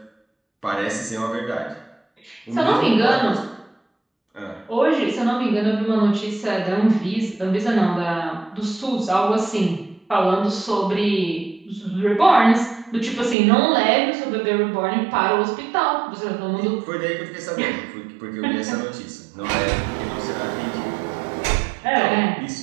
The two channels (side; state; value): left; drops out; at 13.4 s